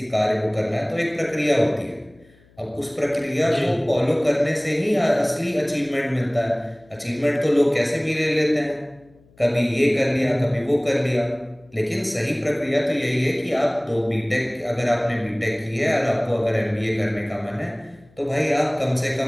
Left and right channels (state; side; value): noise; left; hum, 29 dB below the sound